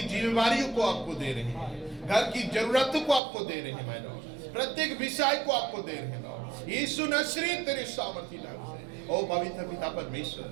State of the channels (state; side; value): drops out; left; at 3.2 s